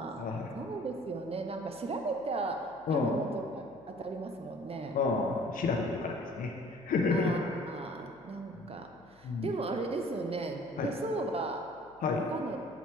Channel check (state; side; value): noise; left; hum, 29 dB below the sound